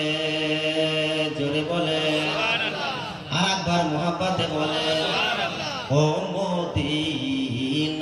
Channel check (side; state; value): both; identical; correlation 1.00